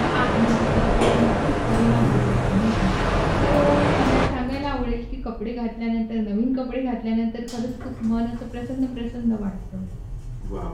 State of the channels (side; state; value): both; identical; correlation 1.00